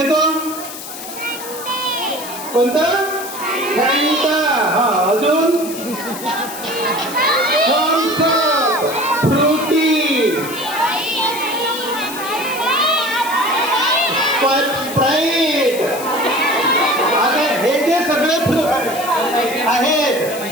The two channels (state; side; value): noise; left; hiss, 11 dB below the sound